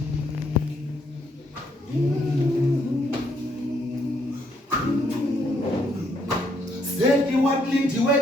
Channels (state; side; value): normal; both; correlation 0.71